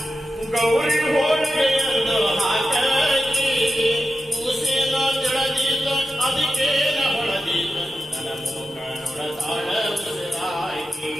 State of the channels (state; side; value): normal; both; correlation 0.90